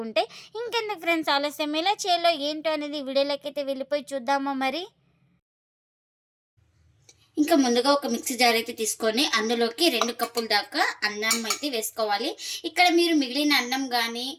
ఉంటాయి. ఇంకెందుకు ఫ్రెండ్స్ ఆలస్యం, ఎలా చేయాలో ఏంటో అనేది వీడియోలోకైతే వెళ్ళిపోయి చూద్దామా మరి. ఇంకా ముందుగా ఒక మిక్సీ జార్ అయితే తీసుకొని అందులోకి 2 కప్పుల దాకా అన్నం అయితే వేసుకోవాలి. ఇక్కడ మీరు మిగిలిన అన్నం కానీ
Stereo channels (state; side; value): identical; both; correlation 1.00